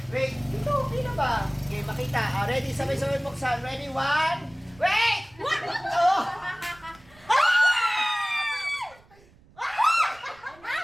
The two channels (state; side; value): noise; right; rumble, 27 dB below the sound